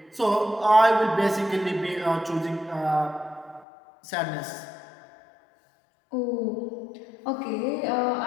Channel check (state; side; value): drops out; right; at 3.7 s